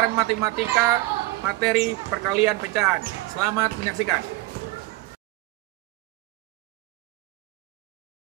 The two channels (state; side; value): quieter; left; 19.8 dB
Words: matematika materi perkalian pecahan. Selamat menyaksikan.